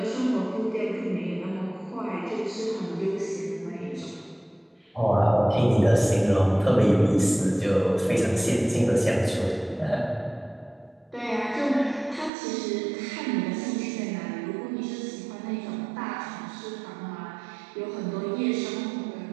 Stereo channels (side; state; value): left; drops out; at 12.3 s